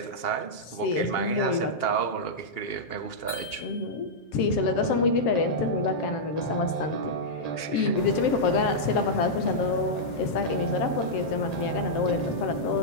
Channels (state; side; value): late; right; 7.5 ms